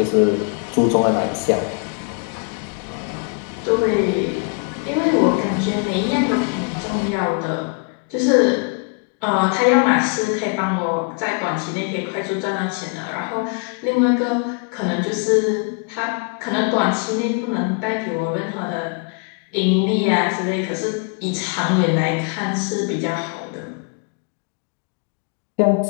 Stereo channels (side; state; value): right; quieter; 36.5 dB